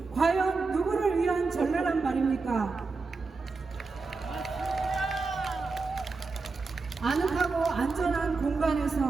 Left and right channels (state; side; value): quieter; left; 4.2 dB